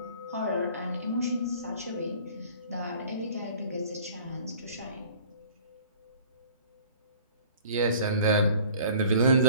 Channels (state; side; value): inverted; both; correlation -0.49